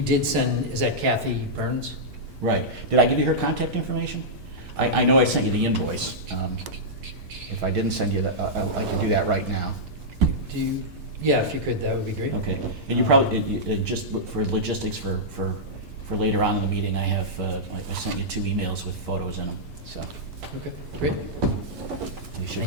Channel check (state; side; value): normal; both; correlation -0.11